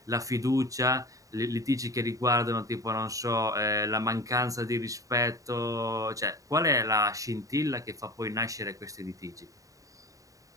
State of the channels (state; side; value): late; left; 0.16 ms